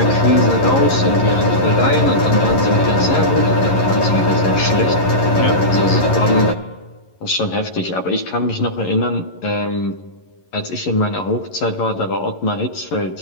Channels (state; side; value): late; right; 11 ms